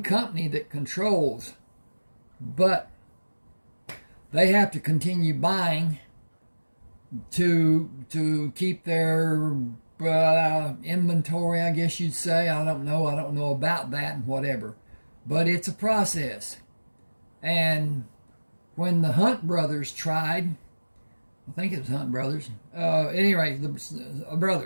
company that controls, but they have to continue buying to keep their inventory, I guess you'd say. I don't know about that and whatever. But it's a process. And when the Hunt brothers tried, I think it was Hunt brothers, anyway, the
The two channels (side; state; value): both; inverted; correlation -1.00